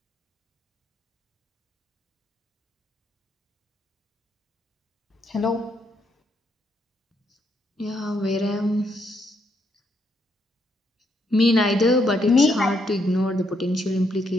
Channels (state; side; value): normal; both; correlation 0.75